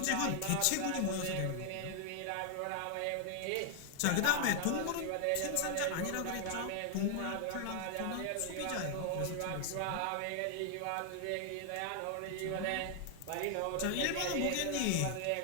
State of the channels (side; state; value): both; different; correlation 0.00